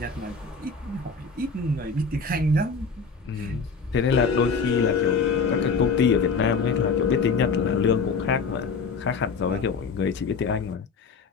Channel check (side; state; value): right; quieter; 4.9 dB